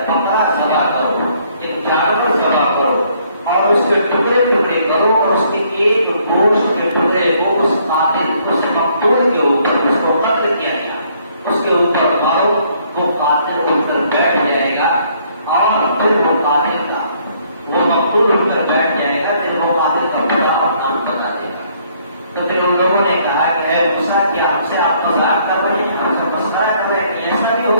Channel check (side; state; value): both; inverted; correlation -0.65